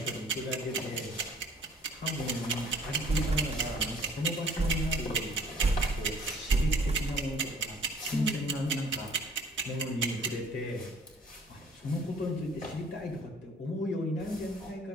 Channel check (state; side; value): normal; both; correlation 0.55